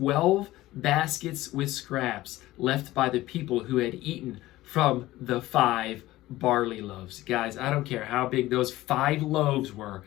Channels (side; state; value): right; quieter; 16.9 dB